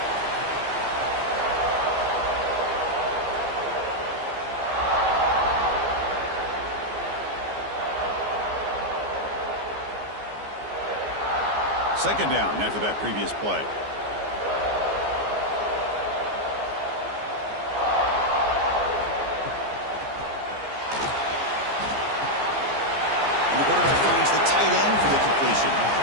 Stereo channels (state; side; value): late; left; 14 ms